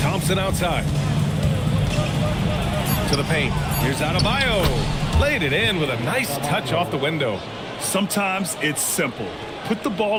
Thompson outside. To the paint. Here's Adebayo. Laid it in with a nice touch off the window. Sometimes it's simple. Put the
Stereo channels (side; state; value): both; identical; correlation 1.00